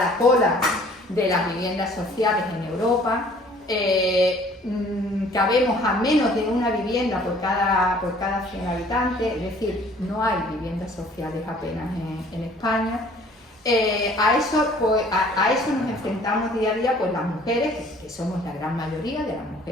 cola de las viviendas sociales en Europa. Cabemos a menos de una vivienda por cada 100 habitantes, es decir, no hay viviendas sociales apenas en España. A eso nos enfrentamos día a día pues las mujeres, que somos la gran mayoría de las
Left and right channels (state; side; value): normal; both; correlation 0.55